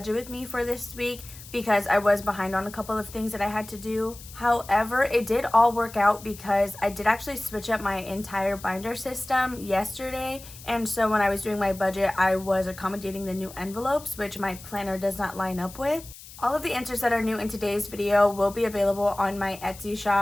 with me for this week because I was behind on a couple of things that I had to do. However, it did all work out because I did actually switch up my entire binder system yesterday, and so when I was doing my budget I was accommodating the new envelopes, which my planner does not line up with. All of the answers that are new in today's video will be available on my Etsy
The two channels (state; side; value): noise; left; hiss, 17 dB below the sound